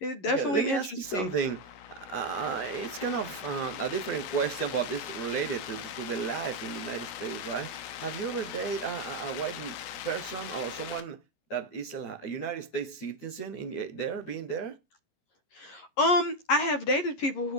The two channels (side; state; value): right; late; 11 ms